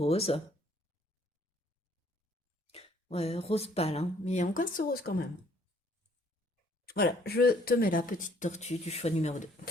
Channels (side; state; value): both; normal; correlation 0.62